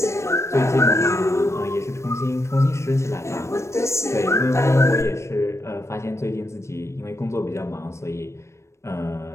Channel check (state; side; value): late; right; 0.13 ms